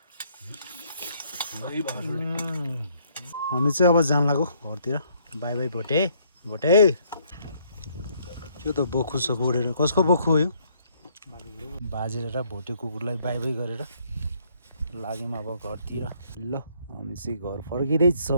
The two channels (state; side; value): inverted; both; correlation -0.66